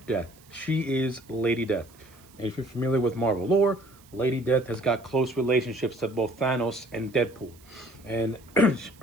death. She is Lady Death. And if you're familiar with Marvel lore, Lady Death has got close relationships to both Thanos and Deadpool. And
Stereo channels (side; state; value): right; noise; hiss, 27 dB below the sound